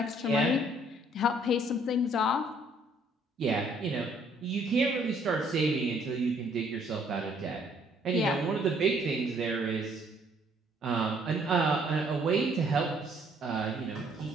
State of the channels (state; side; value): normal; both; correlation 0.63